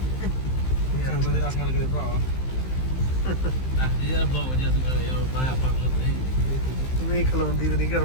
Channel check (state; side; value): late; right; 15 ms